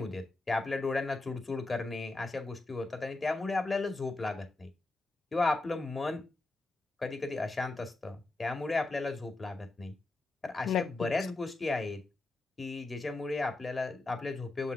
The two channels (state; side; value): quieter; right; 3.0 dB